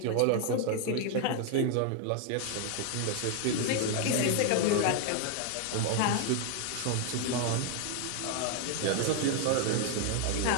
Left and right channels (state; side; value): different; both; correlation 0.00